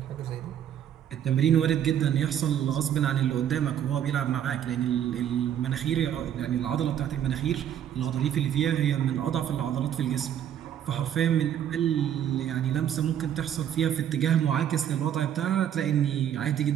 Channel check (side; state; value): left; quieter; 10.0 dB